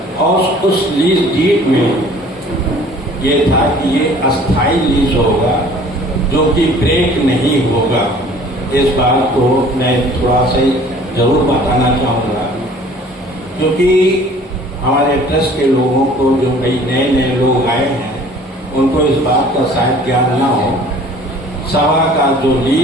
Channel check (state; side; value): normal; both; correlation 0.51